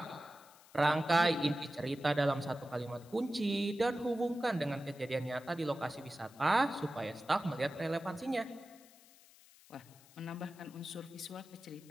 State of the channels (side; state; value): left; noise; hiss, 24 dB below the sound